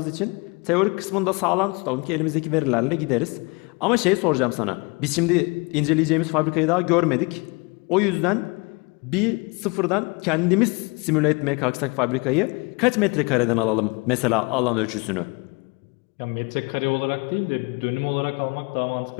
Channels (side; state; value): right; quieter; 28.9 dB